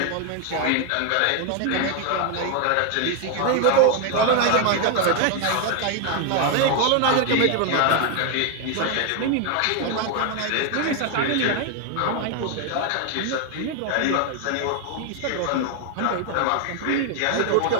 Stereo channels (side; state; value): both; different; correlation 0.01